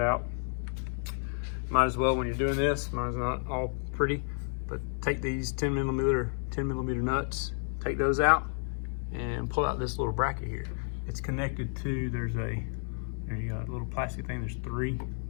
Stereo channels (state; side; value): silent; right; 55 dB below the other